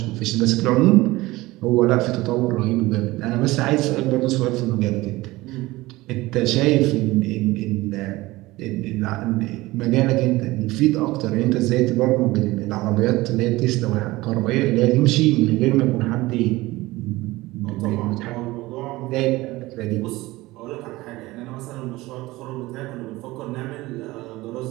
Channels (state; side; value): quieter; left; 19.5 dB